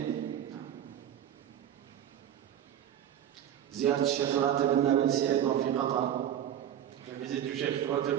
نعم. زيارة الشيخ راتب النابلسي أيضا في قطر. La visite du cheikh Ratib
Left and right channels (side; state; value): left; quieter; 10.5 dB